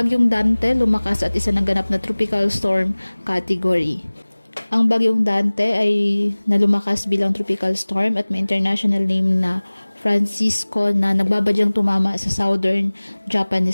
Dante lumakas at isa ng ganap na tropical storm category. Ang Bagyong Dante ay nalumakas bilang tropical storm at may international name na Francisco na nagbabadyang tumama sa southern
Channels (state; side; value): inverted; both; correlation -1.00